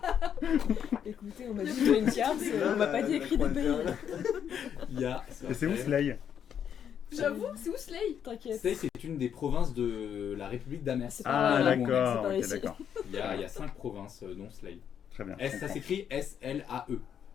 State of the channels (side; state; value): right; quieter; 8.6 dB